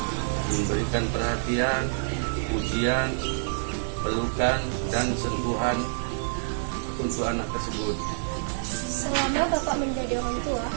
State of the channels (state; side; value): silent; left; digital silence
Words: Memberikan perhatian, pujian, pelukan, dan sentuhan untuk anak tersebut. Selama Bapak menjadi orang tua,